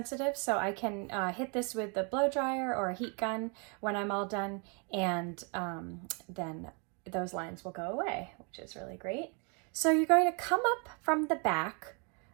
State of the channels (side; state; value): left; quieter; 35.8 dB